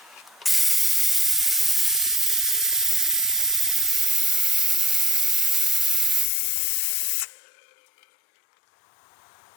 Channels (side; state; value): right; drops out; at 6.3 s